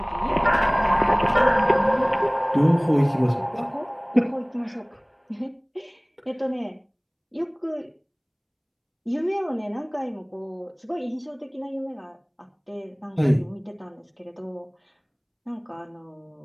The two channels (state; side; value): identical; both; correlation 1.00